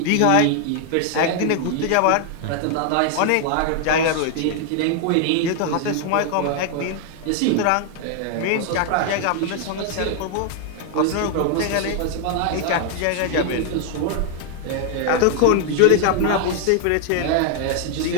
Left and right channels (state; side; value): different; both; correlation 0.00